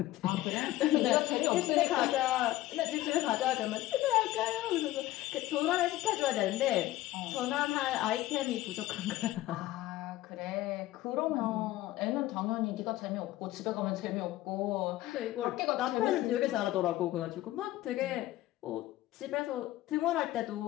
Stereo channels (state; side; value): quieter; right; 15.9 dB